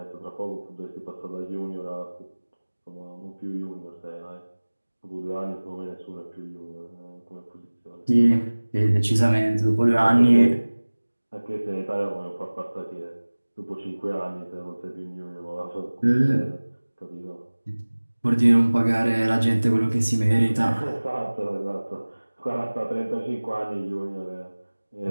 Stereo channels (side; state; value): both; inverted; correlation -1.00